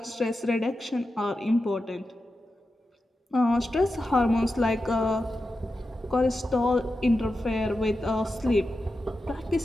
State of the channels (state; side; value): normal; both; correlation 0.91